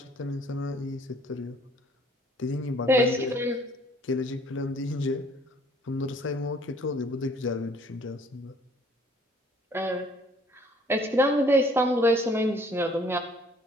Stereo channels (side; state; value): both; normal; correlation 0.58